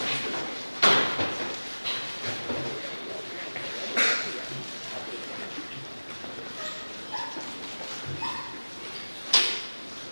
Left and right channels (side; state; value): both; inverted; correlation -1.00